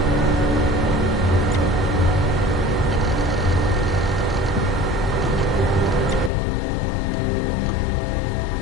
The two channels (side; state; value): right; drops out; at 6.3 s